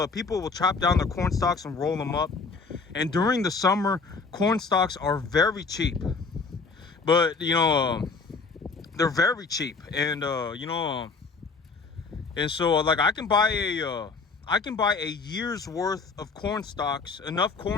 chop down their corn stalks and roll them up. And during the summer, corn stalks are very cheap. But they're very cheap, and and so like I can buy a year's worth of corn stalks, enough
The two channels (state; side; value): quieter; right; 4.4 dB